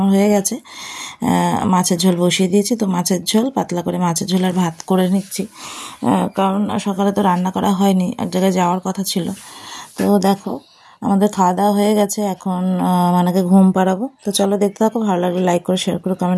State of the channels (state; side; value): identical; both; correlation 1.00